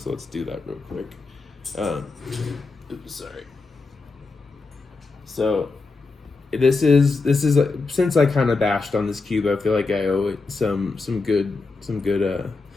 let's do that real quick. Oops, sorry. So this is since I kind of bashed on this cube, I feel like I owe it some good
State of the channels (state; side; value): quieter; right; 3.9 dB